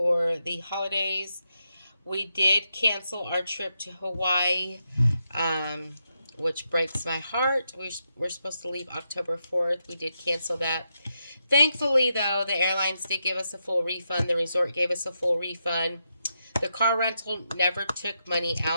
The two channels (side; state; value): both; inverted; correlation -0.84